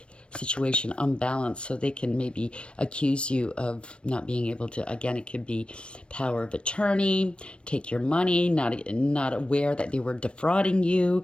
situation, unbalanced, so they can maybe accuse you of not being able to, again, it could be power of attorney, take your money, not aware that they were defrauding you,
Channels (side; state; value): right; late; 0.058 ms